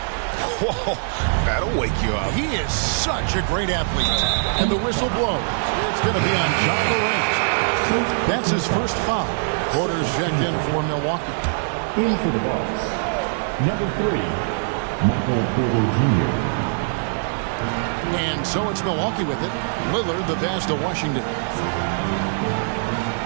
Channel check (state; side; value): silent; left; digital silence